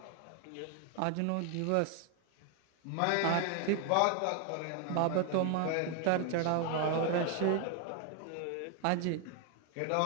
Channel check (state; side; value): different; both; correlation 0.00